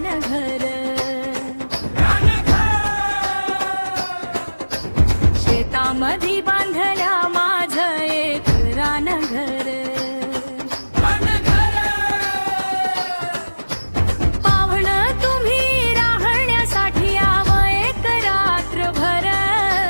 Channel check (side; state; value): both; inverted; correlation -1.00